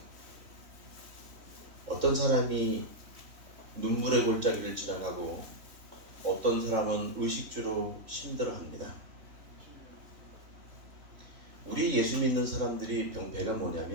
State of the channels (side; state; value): left; late; 3.4 ms